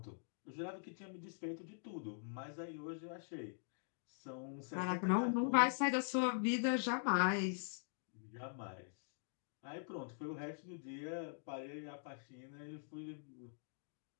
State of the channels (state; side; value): silent; right; digital silence